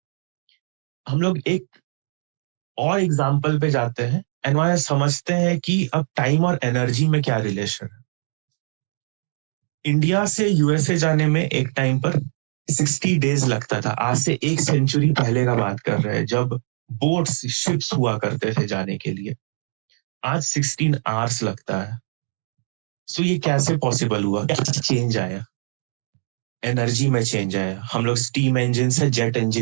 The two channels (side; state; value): left; silent; digital silence